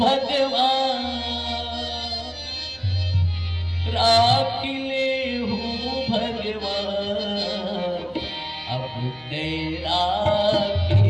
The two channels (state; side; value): noise; right; rumble, 29 dB below the sound